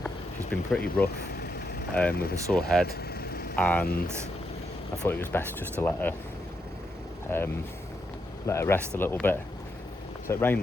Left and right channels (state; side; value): normal; both; correlation 0.81